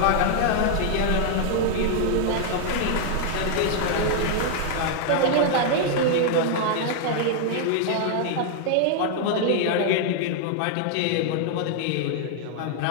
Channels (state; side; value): different; both; correlation 0.00